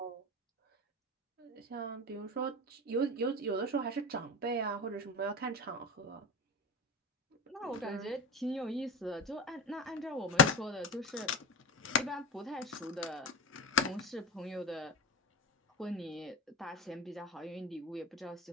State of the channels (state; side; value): normal; both; correlation 0.24